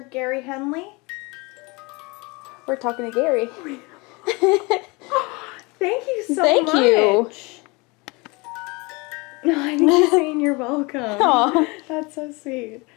Gary Henley? We're talking to Gary. Thank you so Thank much. you. No, I think you're saying you're welcome. Aw. That's so sweet.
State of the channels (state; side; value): quieter; right; 26.7 dB